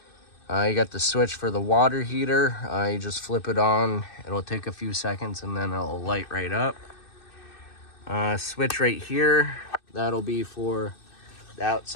You got the switch for the water heater. You just flip it on. It'll take a few seconds, and then it'll light right up. Switch right here, that'll be for the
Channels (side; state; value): right; late; 2.6 ms